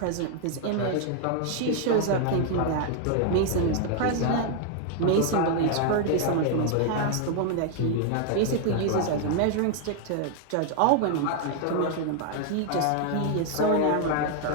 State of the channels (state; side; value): different; both; correlation 0.00